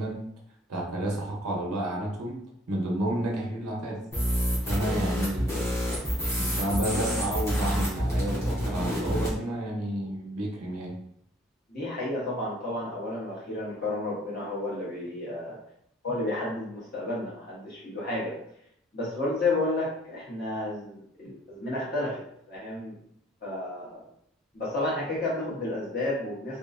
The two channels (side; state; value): both; normal; correlation 0.59